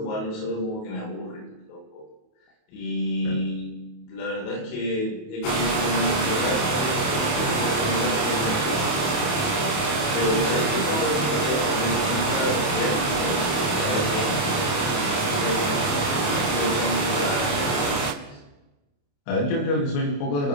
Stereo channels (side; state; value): right; late; 28 ms